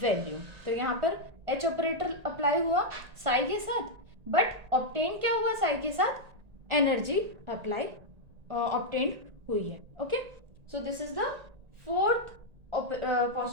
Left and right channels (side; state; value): left; late; 1.9 ms